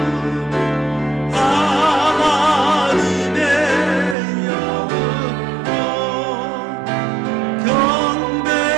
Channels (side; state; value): left; drops out; at 4.2 s